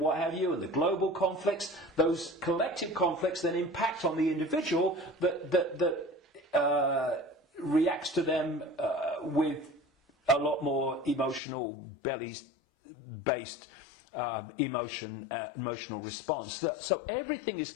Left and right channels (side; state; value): right; drops out; at 11.4 s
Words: have you, and the global conflicts. Those collective conflicts then impact on the individual that reacts to them with a lot more emotional, based emotional response. So everything is